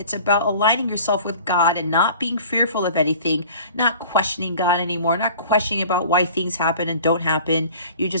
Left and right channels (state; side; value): inverted; both; correlation -0.46